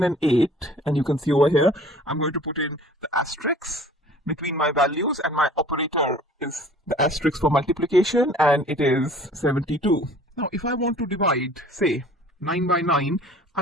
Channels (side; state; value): both; normal; correlation 0.49